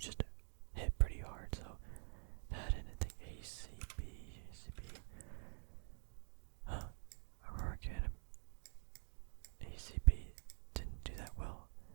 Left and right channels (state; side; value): silent; left; digital silence